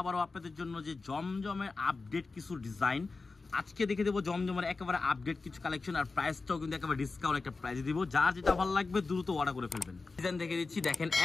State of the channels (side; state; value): right; quieter; 4.0 dB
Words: আপনাদের জন্য যে জমজমের আপডেট কিছু ডিজাইন আজকে দেখে দেবো। জমজমের একেবারে আপডেট কিছু কালেকশন আর প্রাইসটাও কিন্তু একেবারে ডিসকাউন্ট একটা প্রাইসে দিব। যার যেটা ভালো লাগবে দ্রুত অর্ডার করে ফেলবেন। ডিজাইন দেখে দিচ্ছি, দেখেন